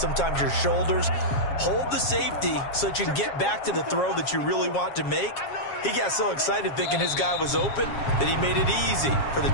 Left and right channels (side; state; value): right; late; 7.4 ms